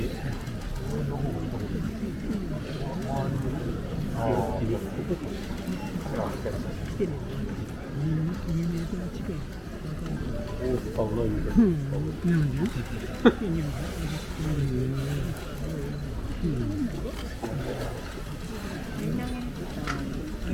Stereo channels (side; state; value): both; identical; correlation 1.00